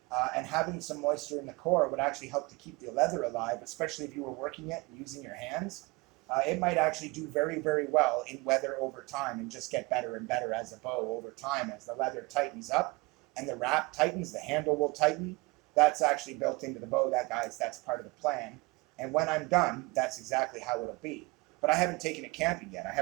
And having some moisture in the core would actually help to keep the leather alive, especially if you were working it using your hands. It might actually do very, very well in weather over time and just get better and better as a bow over time. As the leather tightens up and the wrap tightens, the handle will tighten. That's actually built into the bow. That's part of the plan. And when I'm done, that's exactly how it'll be. But I haven't taken it camping yet. I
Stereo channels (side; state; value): left; quieter; 25.2 dB